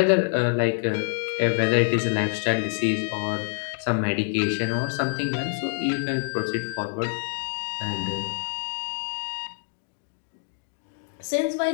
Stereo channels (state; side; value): silent; right; digital silence